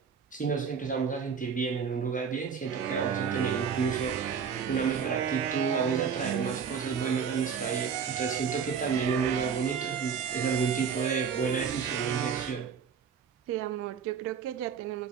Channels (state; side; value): quieter; left; 6.7 dB